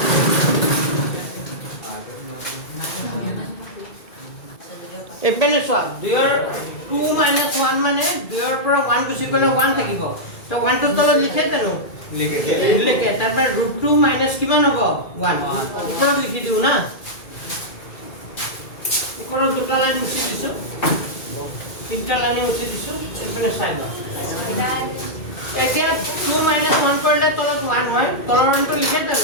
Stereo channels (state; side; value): late; right; 2.2 ms